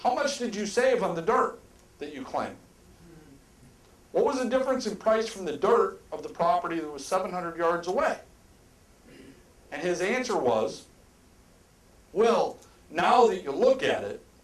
much did you save on the dirt that you claim? What was the difference in price from the dirt of the property that was 700 yards away? And his answer was, well, now that you look at it,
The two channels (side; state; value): both; identical; correlation 1.00